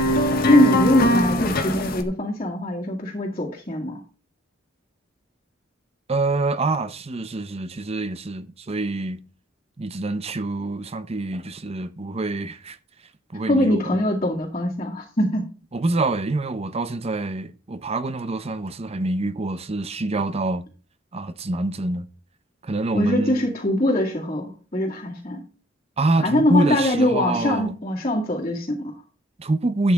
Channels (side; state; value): both; normal; correlation 0.59